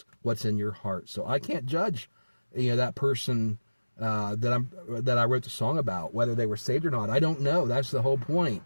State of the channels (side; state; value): both; inverted; correlation -1.00